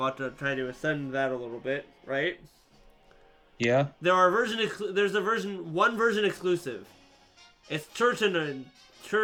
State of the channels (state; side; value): identical; both; correlation 1.00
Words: to try to ascend that a little bit, right? Yeah. There's one version exclusive. It's